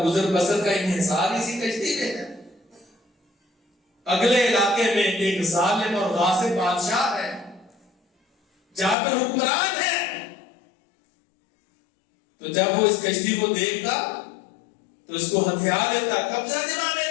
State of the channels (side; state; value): right; drops out; at 9.0 s